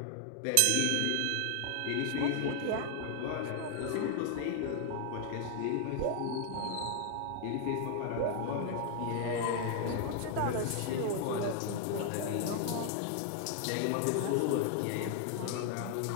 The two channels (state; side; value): different; both; correlation 0.00